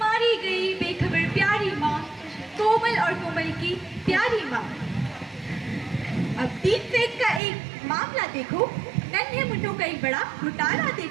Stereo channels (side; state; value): left; drops out; at 7.4 s